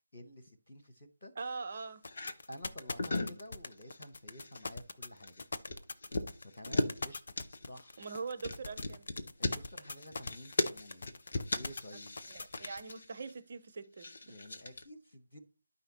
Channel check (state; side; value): inverted; both; correlation -0.89